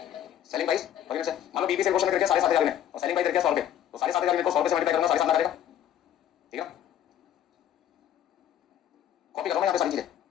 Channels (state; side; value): quieter; right; 10.6 dB